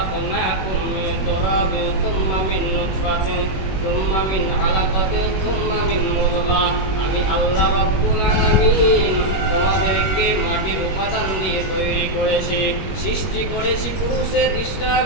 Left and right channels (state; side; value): late; right; 21 ms